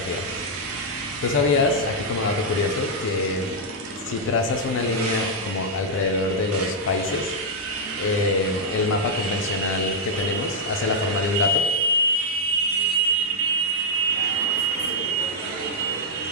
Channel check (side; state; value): both; normal; correlation -0.04